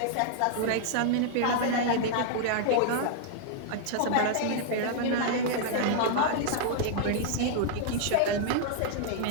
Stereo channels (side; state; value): both; different; correlation -0.01